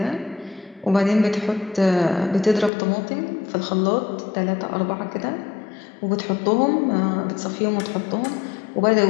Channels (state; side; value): drops out; right; at 2.7 s